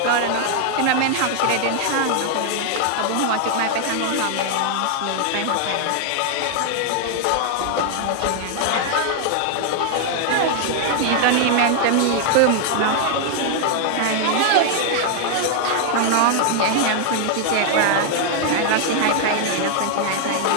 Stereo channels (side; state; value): both; different; correlation 0.00